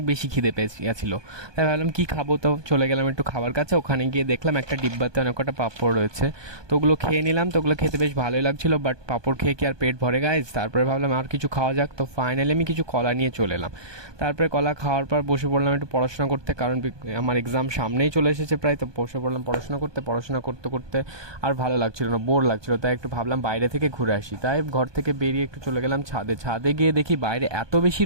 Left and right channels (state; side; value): late; left; 1.2 ms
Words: বেশি খিদে পেয়েছিল। তাই ভাবলাম কি খাবো, তো চলে গেলাম একটু খাবার কাছে। ওখানে গিয়ে দেখলাম একটা ডিব্বাতে অনেক কটা পাঁপড় রয়েছে। তো ওগুলো খেয়ে নিলাম। তো ওগুলো খেতে বেশ ভালোই লাগছিল, বাট পাঁপড় খেয়ে কি আর পেট ভরে গাইজ? তারপরে ভাবলাম আর কিছু খাওয়া যাক। তো ফাইনালি আমি কিছু কলা নিয়ে চলে এলাম। তারপরে কলা খাওয়ার পর বসে পড়লাম একটু পড়াশোনা করতে, কারণ আমার এক্সাম সামনেই চলে এসেছে প্রায়। তো বসে পড়লাম পড়াশোনা করতে করতে আর ভালো লাগছিল না, বোর লাগছিল। তাই একটু ভাবলাম বাইরে থেকে ঘুরে আসি। তাই ঘর থেকে বেরিয়ে একটু চলে গেলাম ছাদে গিয়ে দেখি বাইরে এত বেশি